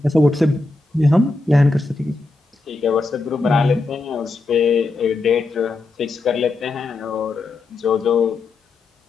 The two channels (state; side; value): quieter; right; 3.3 dB